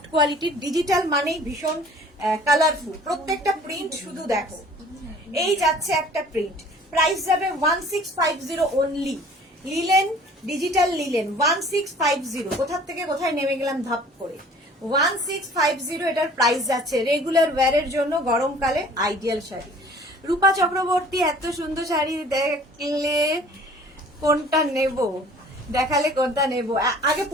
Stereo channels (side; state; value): both; normal; correlation 0.50